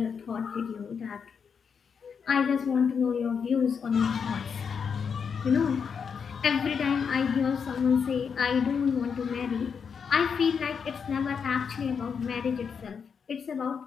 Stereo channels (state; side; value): quieter; right; 6.4 dB